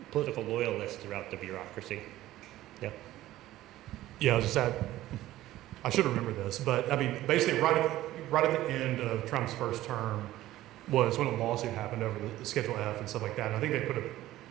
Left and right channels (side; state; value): left; quieter; 15.2 dB